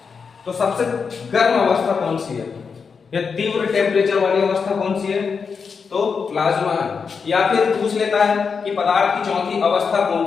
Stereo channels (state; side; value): quieter; right; 5.7 dB